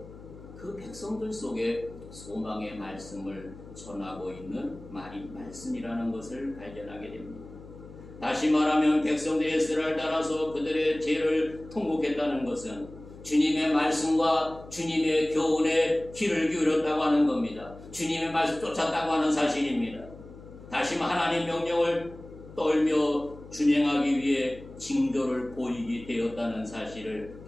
그 백성들 속에 소망의 말씀을 전하고 있는 말씀이라는 것을 발견하게 됩니다. 다시 말하면 백성들의 에스라를 따라서 그들의 죄를 통곡했다는 것은 주님의 말씀과 주님의 교훈에 귀를 기울였다고 하는 겁니다. 주님의 말씀 쫓았다고 하는 사실입니다. 다시 하나님 명령을 떨며 준행하기 위해 징조를 보이게 되었다는 사실을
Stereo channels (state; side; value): noise; left; hum, 17 dB below the sound